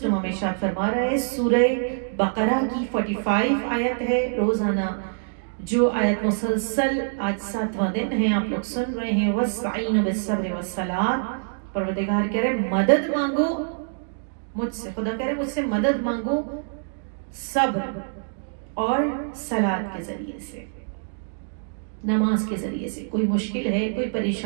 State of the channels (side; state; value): left; silent; digital silence